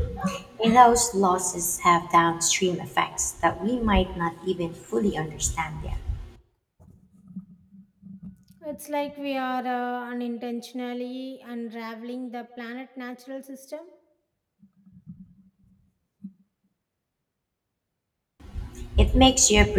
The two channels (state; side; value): identical; both; correlation 1.00